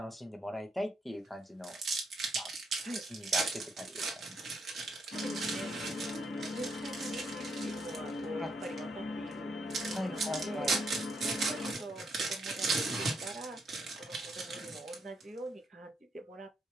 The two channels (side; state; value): both; normal; correlation 0.76